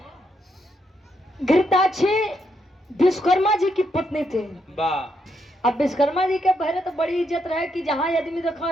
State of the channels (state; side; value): normal; both; correlation 0.78